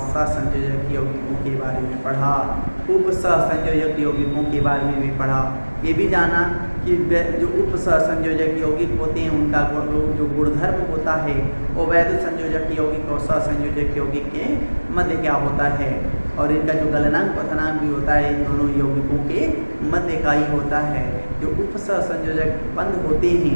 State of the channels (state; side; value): inverted; both; correlation -1.00